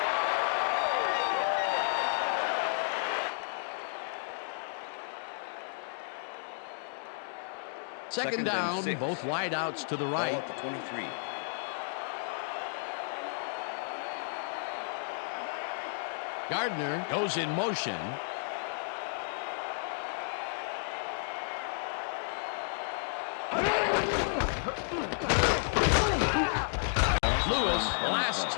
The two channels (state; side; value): silent; right; digital silence